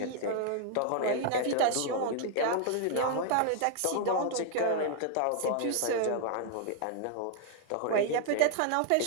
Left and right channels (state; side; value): different; both; correlation 0.00